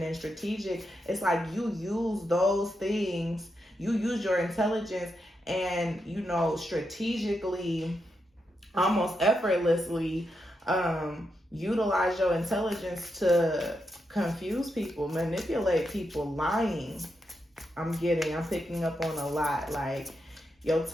and strategic. It's like you use those things, you use your intelligence and, you know, strategically, almost effortlessly, utilize your intelligence to confuse people, manipulate people, lying. I'm picking up on a lot. Like, your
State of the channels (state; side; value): normal; both; correlation 0.84